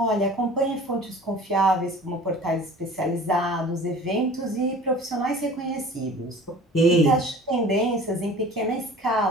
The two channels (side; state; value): both; normal; correlation 0.44